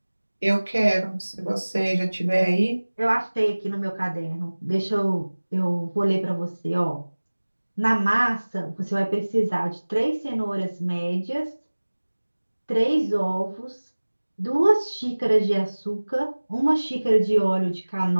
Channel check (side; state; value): both; inverted; correlation -1.00